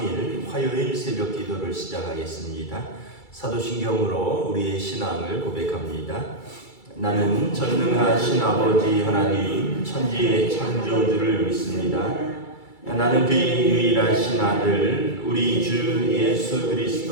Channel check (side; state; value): right; late; 2.3 ms